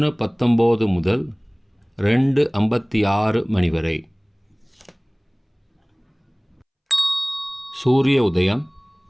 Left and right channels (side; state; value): both; identical; correlation 1.00